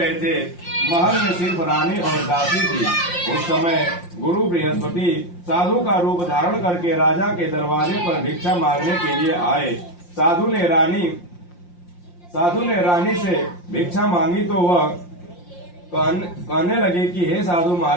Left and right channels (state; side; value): late; right; 5.7 ms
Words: थे। महल में सिर्फ रानी और दासी थी। उस समय गुरु बृहस्पति साधु का रूप धारण करके राजा के दरवाजे पर भिक्षा मांगने के लिए आए। साधु ने रानी से भिक्षा मांगी तो वह कहने लगे कि हे साधु